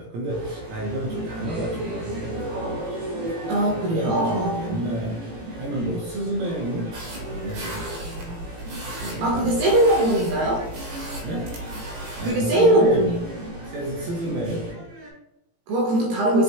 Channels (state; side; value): late; left; 18 ms